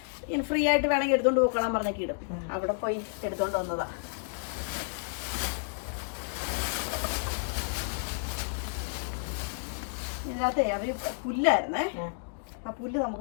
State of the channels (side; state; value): right; silent; digital silence